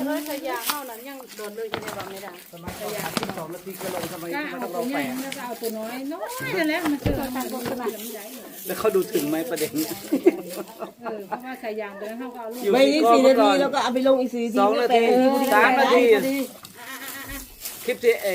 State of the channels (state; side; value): identical; both; correlation 1.00